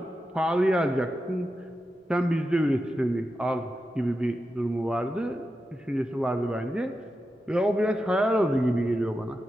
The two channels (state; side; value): normal; both; correlation 0.90